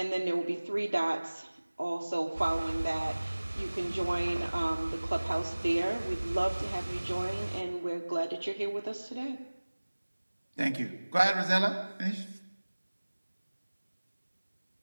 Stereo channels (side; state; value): both; inverted; correlation -1.00